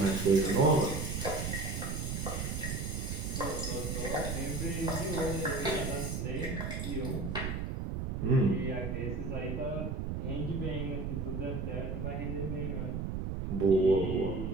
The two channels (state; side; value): noise; right; rumble, 3 dB below the sound